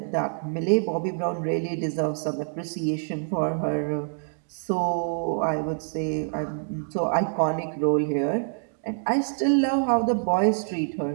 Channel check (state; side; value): silent; left; digital silence